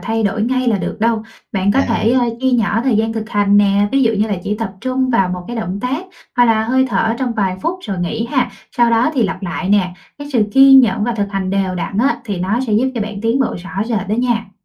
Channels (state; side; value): identical; both; correlation 1.00